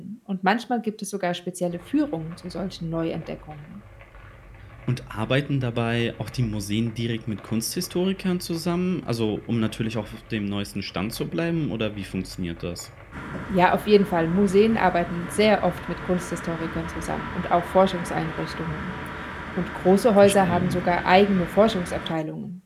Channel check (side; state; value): both; identical; correlation 1.00